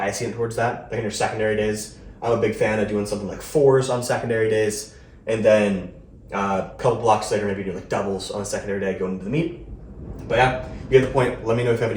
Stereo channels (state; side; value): identical; both; correlation 1.00